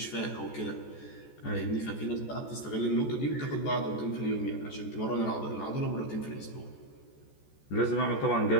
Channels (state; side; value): late; right; 14 ms